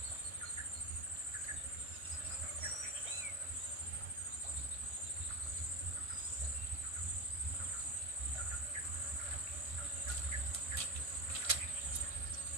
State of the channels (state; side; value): late; left; 1.5 ms